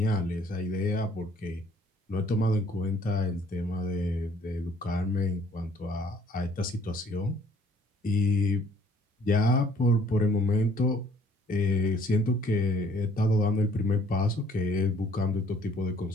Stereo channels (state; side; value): normal; both; correlation 0.60